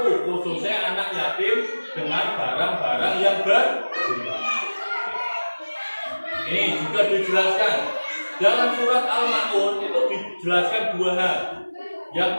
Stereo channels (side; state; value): both; inverted; correlation -1.00